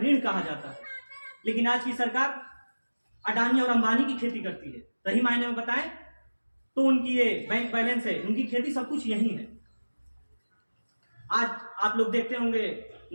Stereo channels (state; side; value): inverted; both; correlation -1.00